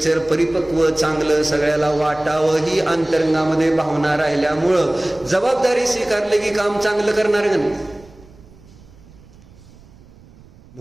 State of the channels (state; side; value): noise; right; rumble, 24 dB below the sound